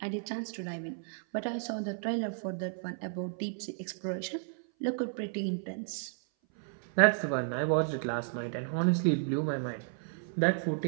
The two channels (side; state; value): left; silent; 56 dB below the other